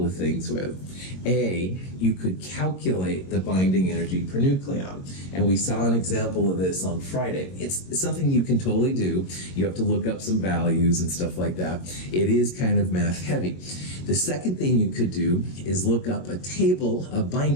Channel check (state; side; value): late; right; 22 ms